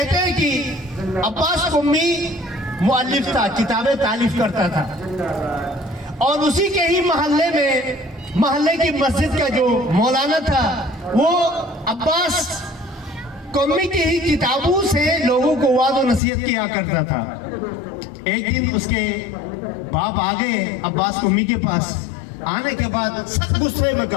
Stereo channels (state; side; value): drops out; right; at 16.2 s